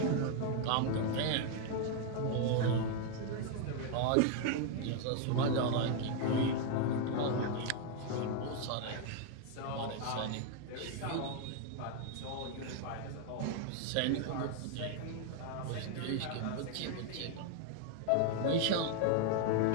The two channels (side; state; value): both; different; correlation 0.00